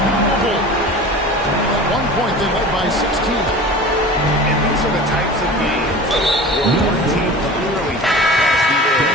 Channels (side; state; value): both; normal; correlation 0.37